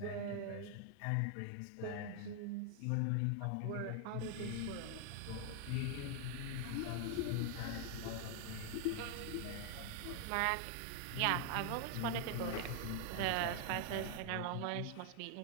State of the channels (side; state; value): both; different; correlation 0.00